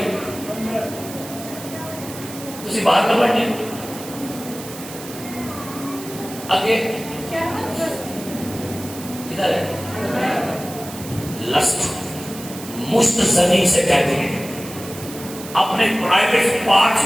تسی باہر نہ بڑھنے. آگے کدھر ہے؟ لسٹ مشت زنی سے کہتے ہیں اپنے پرائیویٹ پارٹس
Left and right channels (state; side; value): noise; right; hiss, 13 dB below the sound